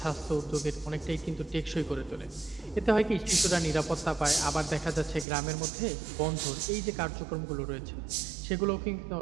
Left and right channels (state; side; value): drops out; left; at 5.2 s